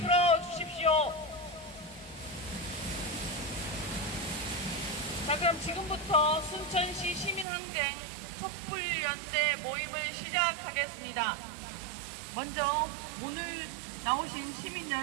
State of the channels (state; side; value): drops out; left; at 7.5 s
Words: 자, 그럼 지금부터 순천시 시민항쟁 촛불연대 모임을 시작하겠습니다. 먼저 오늘 나오신 시민